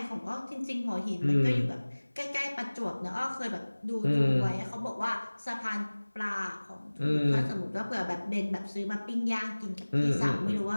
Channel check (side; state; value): both; inverted; correlation -1.00